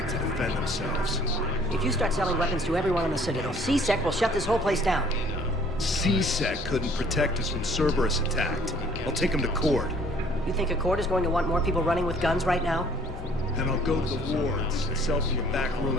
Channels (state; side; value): normal; both; correlation 0.56